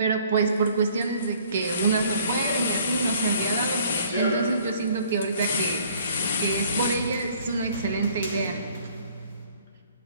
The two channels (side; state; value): both; inverted; correlation -0.58